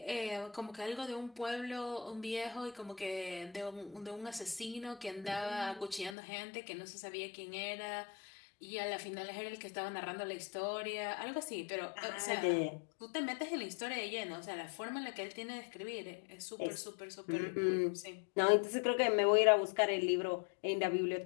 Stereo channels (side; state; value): right; drops out; at 6.2 s